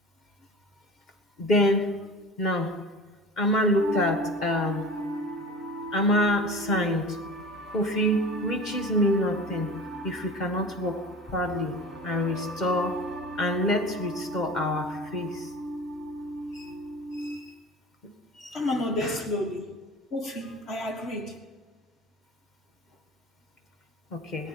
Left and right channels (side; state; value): both; normal; correlation 0.37